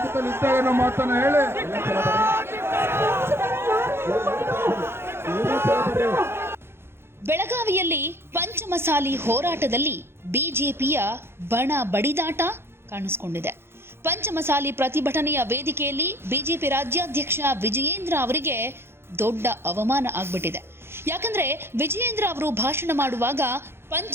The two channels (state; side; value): late; left; 0.12 ms